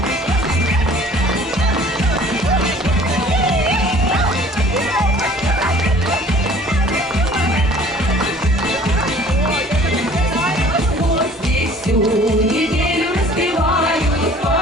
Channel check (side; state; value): both; normal; correlation 0.51